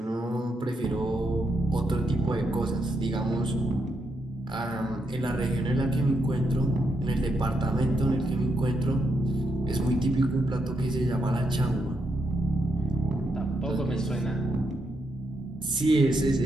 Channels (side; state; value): both; normal; correlation 0.81